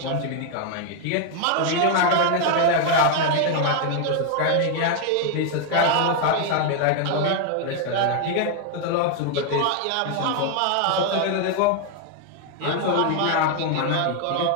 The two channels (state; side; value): different; both; correlation 0.00